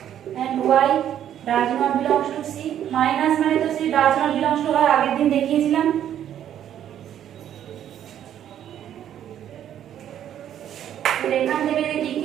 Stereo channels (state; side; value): quieter; left; 10.5 dB